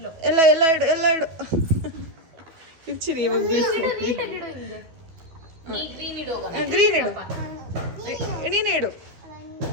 ಎಲ್ಲ ಇಡು, ಎಲ್ಲ ಇಡು. ಇಡ್ಚಿರಿ ಇವಾಗ ಬೀಳ್ತೀನಿ. ಗ್ರೀನ್ ಇಡು. ನೀನೇ ಇಡು.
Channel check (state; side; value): late; left; 12 ms